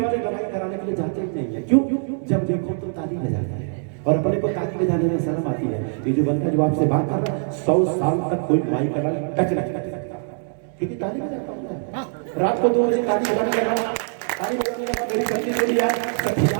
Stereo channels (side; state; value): left; silent; 62 dB below the other